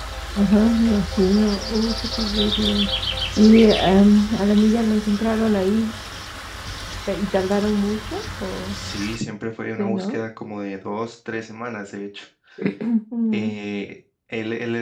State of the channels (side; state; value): both; identical; correlation 1.00